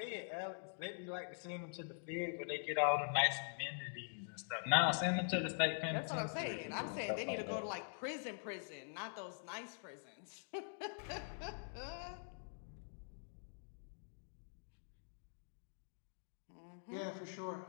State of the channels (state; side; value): silent; right; digital silence